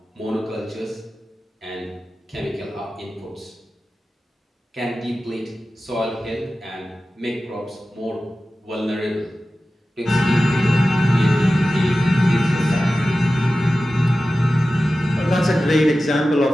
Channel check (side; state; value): both; normal; correlation 0.94